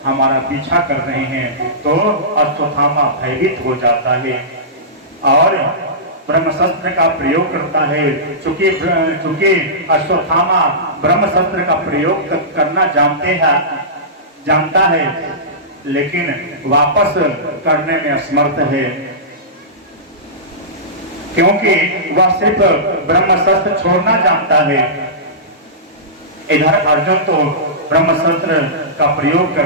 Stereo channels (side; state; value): both; normal; correlation -0.19